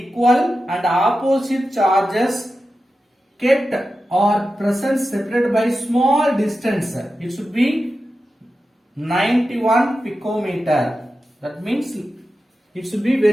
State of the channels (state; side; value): normal; both; correlation 0.92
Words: and opposite charges kept or present separated by small distance. It should be 91 picometer. That means it should be